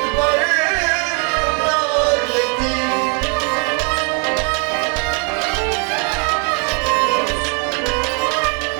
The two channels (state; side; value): quieter; left; 37.1 dB